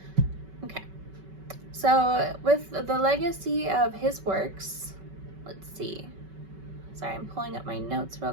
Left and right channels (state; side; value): late; left; 5.3 ms